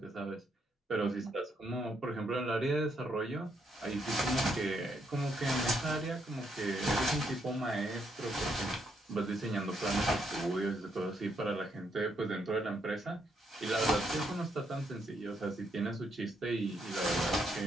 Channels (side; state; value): both; normal; correlation 0.76